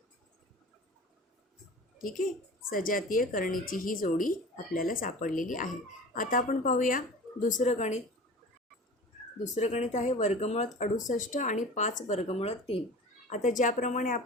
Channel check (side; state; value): both; normal; correlation 0.38